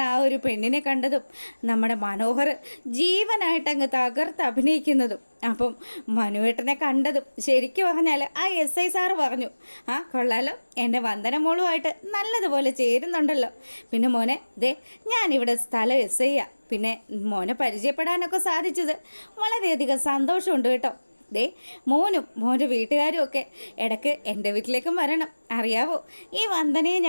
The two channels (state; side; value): inverted; both; correlation -1.00